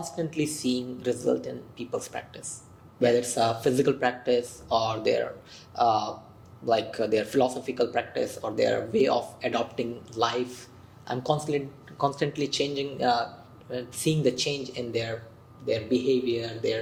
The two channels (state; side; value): identical; both; correlation 1.00